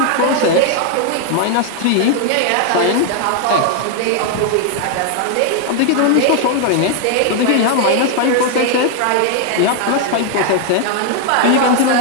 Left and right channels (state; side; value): different; both; correlation 0.00